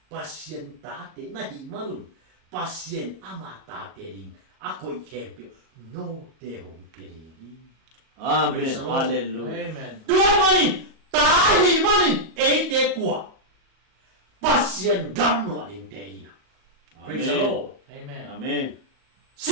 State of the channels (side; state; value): left; late; 38 ms